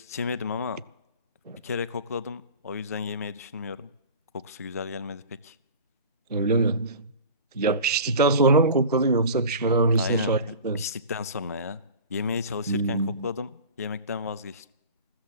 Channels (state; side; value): inverted; both; correlation -0.37